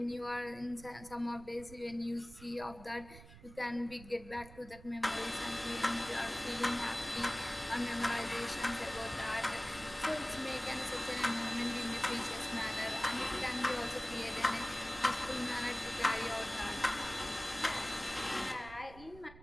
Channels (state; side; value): noise; right; rumble, 18 dB below the sound